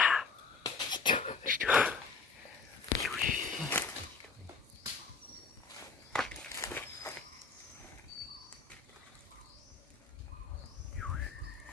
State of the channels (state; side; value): quieter; right; 4.9 dB